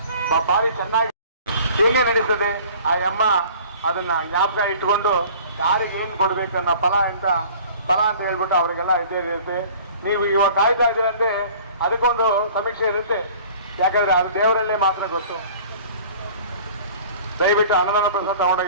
ಭಾರಿ ಚೆನ್ನಾಗಿ ಹೇಗೆ ನಡೀತದೆ. ಆ ಅಮ್ಮ ಅದನ್ನ ಜ್ಞಾಪಕ ಇಟ್ಕೊಂಡು ಯಾರಿಗೆ ಏನು ಕೊಡ್ಬೇಕು ಅನ್ನೋ ಫಲ ಅಂತ ಹೇಳ್ಬಿಟ್ಟು ಅವರಿಗೆಲ್ಲ ಇರುತ್ತೆ. ನೀವು ಇವಾಗ ಕಾಯ್ತಾ ಇದ್ದೀರಂತೆ, ಅದಕ್ಕೊಂದು ಸಮೀಕ್ಷೆ ಇರುತ್ತೆ. ಯಾಕಂದ್ರೆ ಅದು ದೇವರಲ್ಲೇ ಮಾತ್ರ ಗೊತ್ತು. ದಯವಿಟ್ಟು ಅನ್ನದಾನ ಪ್ರಸಾದ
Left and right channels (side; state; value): both; inverted; correlation -0.47